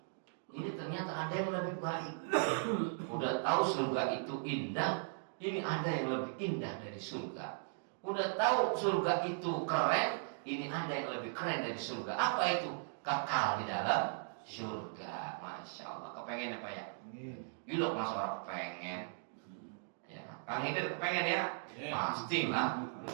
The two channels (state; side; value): silent; left; digital silence